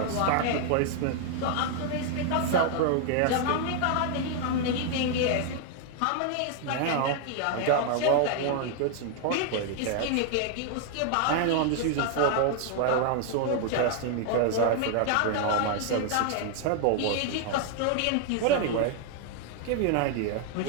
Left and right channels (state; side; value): different; both; correlation 0.00